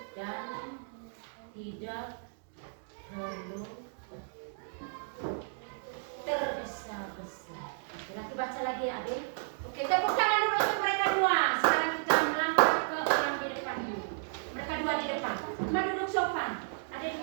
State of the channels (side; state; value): left; silent; digital silence